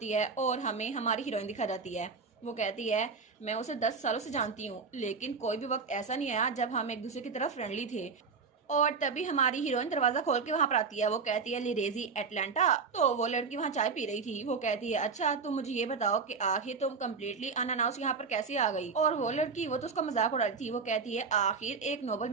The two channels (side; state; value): left; quieter; 5.1 dB